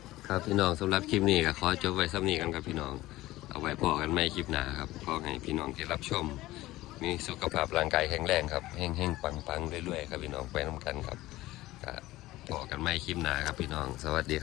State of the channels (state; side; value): quieter; right; 17.3 dB